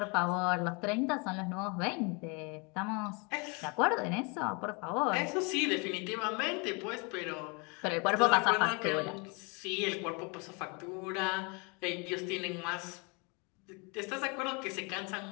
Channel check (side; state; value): right; quieter; 31.4 dB